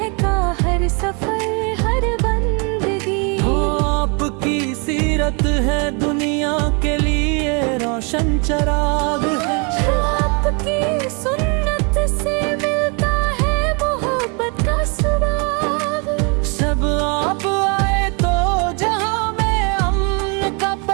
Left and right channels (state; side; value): quieter; left; 33.8 dB